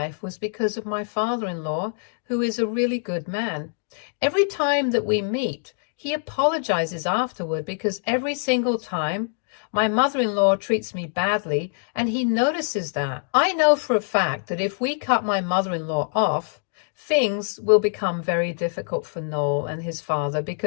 was because of my father-in-law, who is a really good man. Every time that we meet, he apologizes afterward because every single time my mother-in-law treats me badly, and he notices that. I know for a fact that if we cut my mother-in-law off, things will become very difficult for Noel and his father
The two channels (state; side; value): silent; right; digital silence